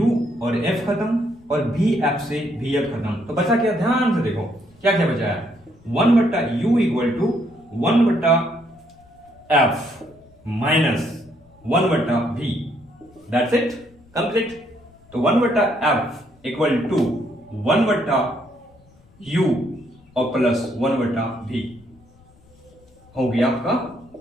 और F खत्म, और VF से VF खत्म, तो बचा क्या, ध्यान से देखो क्या बचा है, 1 बट्टा U इक्वल टू 1 बट्टा F माइनस 1 बट्टा V, दैट्स इट, कंप्लीट। तो 1 बट्टा F इक्वल टू 1 बट्टा U और प्लस 1 बट्टा V हो गया आपका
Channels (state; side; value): noise; left; rumble, 28 dB below the sound